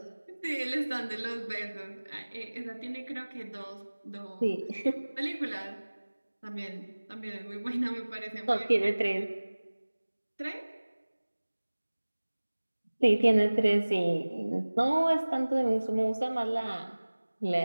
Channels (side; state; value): both; inverted; correlation -1.00